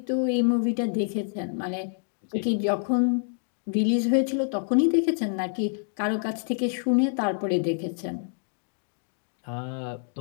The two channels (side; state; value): right; silent; 60 dB below the other